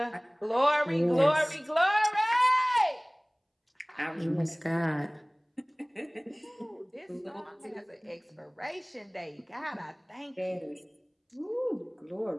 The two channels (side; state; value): both; identical; correlation 1.00